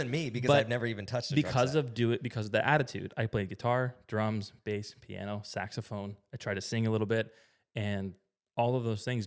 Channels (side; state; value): both; identical; correlation 1.00